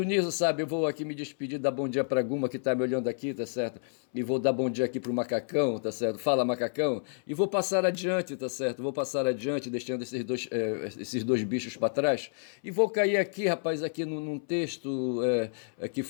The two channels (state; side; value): silent; right; 58 dB below the other